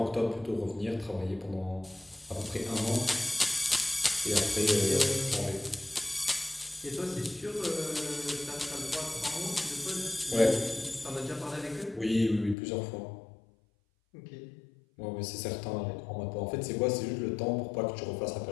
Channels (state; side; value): drops out; right; at 12.6 s